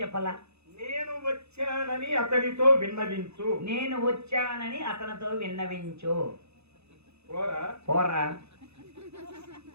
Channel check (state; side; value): late; left; 0.80 ms